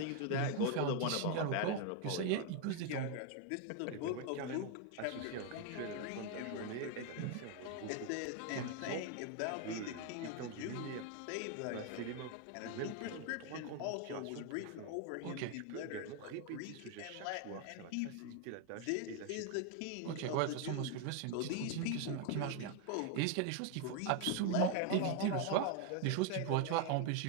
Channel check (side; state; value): both; different; correlation 0.01